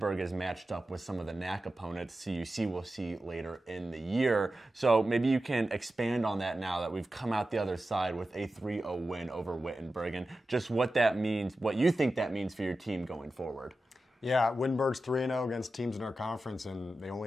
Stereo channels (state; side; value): normal; both; correlation 0.92